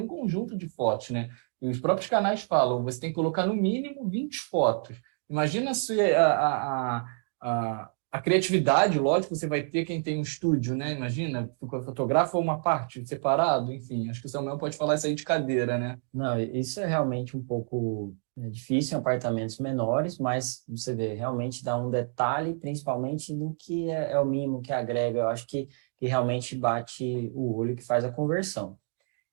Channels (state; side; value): silent; left; 59 dB below the other